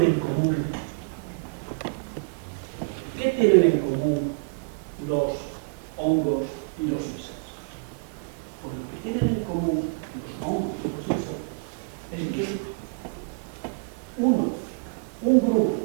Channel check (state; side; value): quieter; left; 32.7 dB